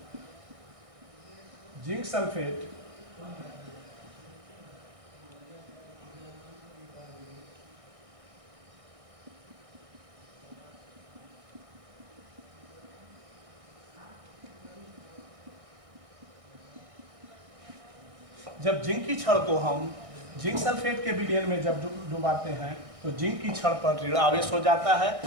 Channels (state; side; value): late; left; 1.6 ms